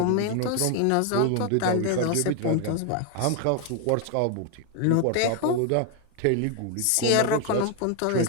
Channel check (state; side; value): different; both; correlation 0.01